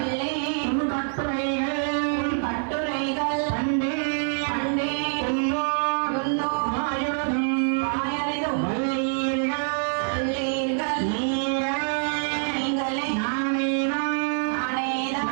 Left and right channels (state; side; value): silent; left; 61 dB below the other